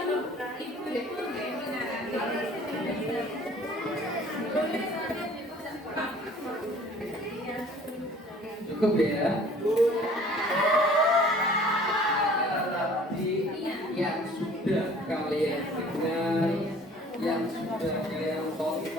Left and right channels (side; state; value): both; normal; correlation 0.51